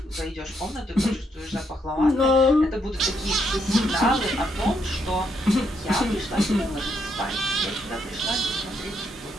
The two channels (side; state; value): both; normal; correlation 0.76